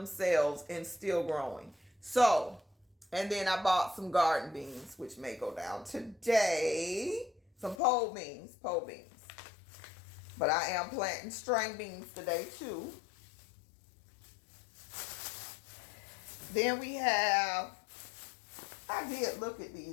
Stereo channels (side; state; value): right; drops out; at 7.8 s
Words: and still growing. So, and then I bought some garden beans, which may go down today. Some pole beans. But I am planting string beans today too. Then we have, I did look at